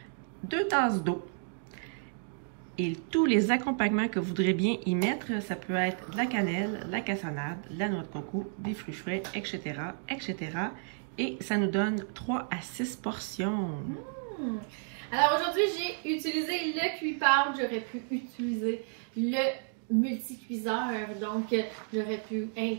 2 tasses d'eau et tous les accompagnements que vous voudrez bien y mettre. Ça peut être de la cannelle, de la cassonade, de la noix de coco, des fruits frais, etc., etc. Et ça nous donne 3 à 6 portions. Alors aujourd'hui, j'ai utilisé le cuit-pâte. J'aurais pu utiliser le multi-cuiseur. Donc, j'aurais pu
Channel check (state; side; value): silent; left; 57 dB below the other